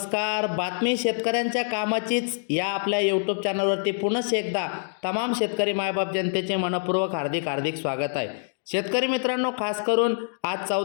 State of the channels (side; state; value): right; silent; digital silence